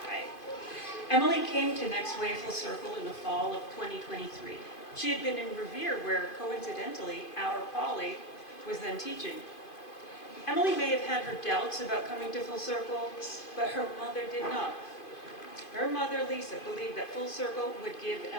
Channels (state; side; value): late; right; 2.5 ms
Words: Hi. Emily came to Next Wave Full Circle in the fall of 2023. She had been in Revere, where coincidentally, our Polly was then teaching. Emily may have had her doubts about coming to Full Circle, but her mother did not. Her mother, Lisa, believed that Full Circle would give